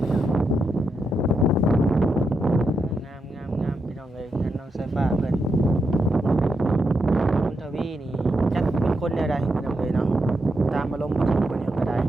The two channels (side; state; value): both; normal; correlation 0.83